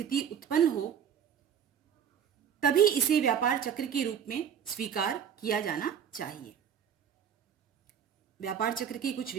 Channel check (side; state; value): left; quieter; 8.2 dB